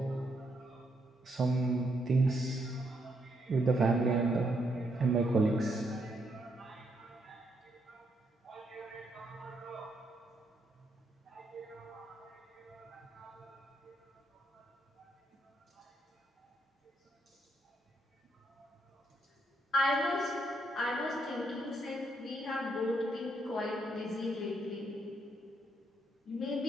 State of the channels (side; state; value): both; normal; correlation 0.76